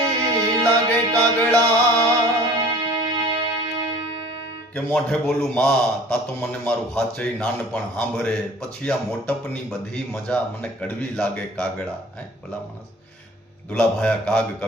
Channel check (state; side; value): normal; both; correlation 0.47